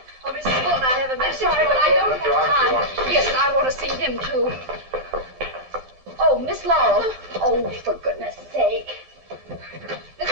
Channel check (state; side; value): late; left; 12 ms